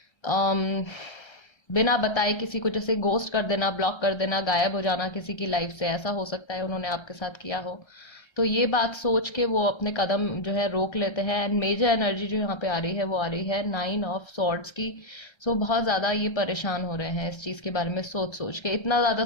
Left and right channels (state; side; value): late; right; 1.3 ms